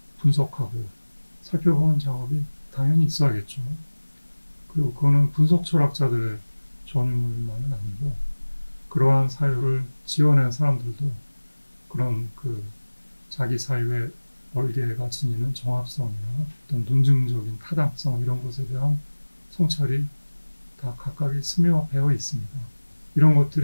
분석하고 살펴보는 작업이 당연히 있어야겠죠. 그리고 그거는 분석 철학자들의 전유물만은 아니고 그러한 사유를 지어낸 사람들도 그런 그 자기 사유의 얼개가 지니는 정합성이나 어떤 논증적인 타당성 이런 것에 대한 성찰이 다 각각이 스며 배어 있습니다. 이런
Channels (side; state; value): both; inverted; correlation -1.00